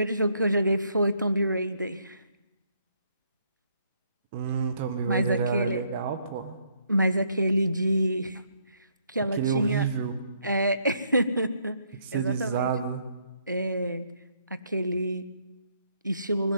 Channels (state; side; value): inverted; both; correlation -0.71